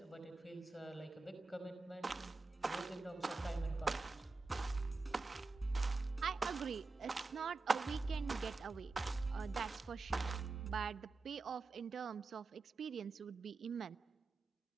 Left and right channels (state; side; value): quieter; left; 3.8 dB